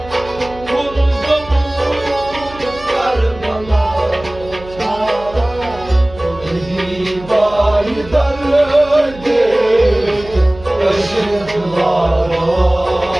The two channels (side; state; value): right; noise; hum, 17 dB below the sound